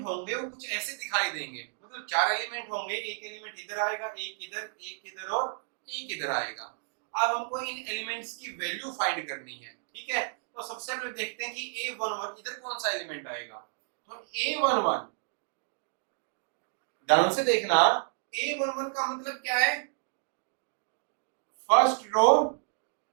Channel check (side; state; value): left; silent; digital silence